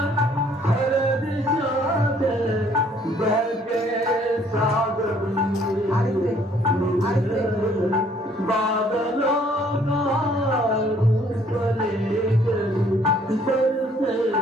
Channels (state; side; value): normal; both; correlation 0.61